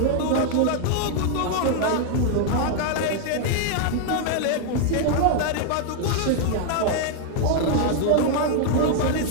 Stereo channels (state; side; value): different; both; correlation 0.00